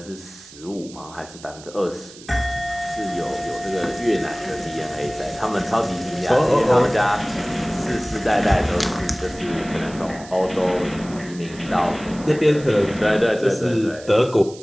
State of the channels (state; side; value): noise; right; hiss, 19 dB below the sound